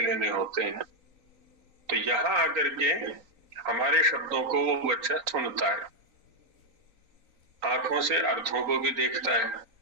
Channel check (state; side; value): late; left; 3.9 ms